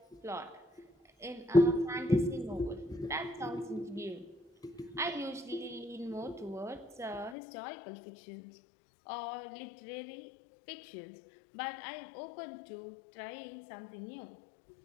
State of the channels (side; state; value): right; drops out; at 7.4 s